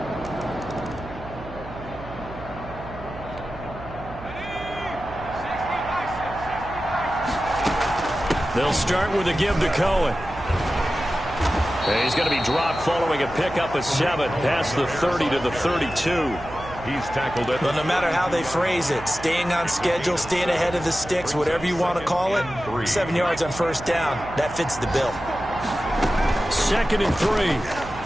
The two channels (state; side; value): noise; right; hum, 14 dB below the sound